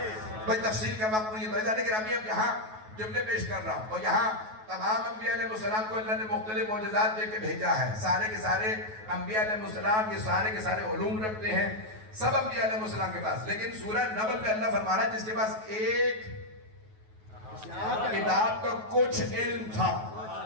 بھئی تفصیل کا وقت نہیں ہے لیکن ابھی اب یہاں جملے پیش کر رہا ہوں اور یہاں تمام انبیاء علیہ السلام کو اللہ نے مختلف معجزات دے کے بھیجا ہے سارے کے سارے انبیاء علیہ السلام یہ سارے کے سارے علوم رکھتے ہیں سب انبیاء علیہ السلام کے پاس لیکن سورہ نمل میں اللہ فرما رہا ہے جس کے پاس ایک کتاب کا کچھ علم تھا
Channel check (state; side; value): late; left; 9.3 ms